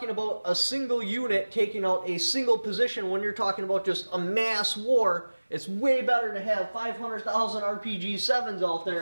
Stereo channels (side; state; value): both; inverted; correlation -1.00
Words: about a single unit taking out a single position, when you're talking about just a mass war, it's way better to have 500,000 RPG-7s out